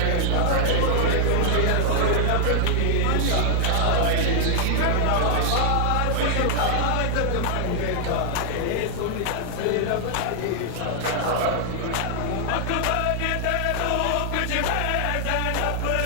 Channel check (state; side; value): different; both; correlation -0.01